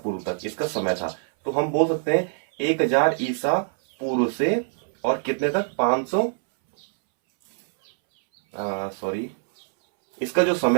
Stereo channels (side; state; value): left; silent; 63 dB below the other